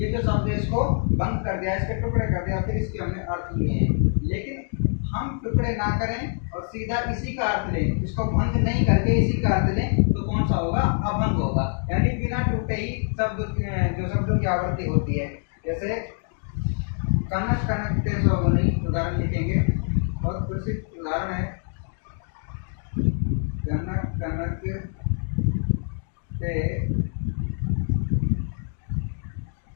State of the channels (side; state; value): right; silent; 56 dB below the other